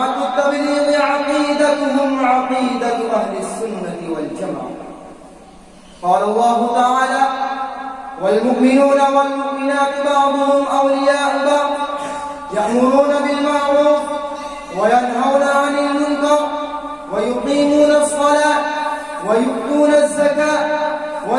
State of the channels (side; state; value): both; identical; correlation 1.00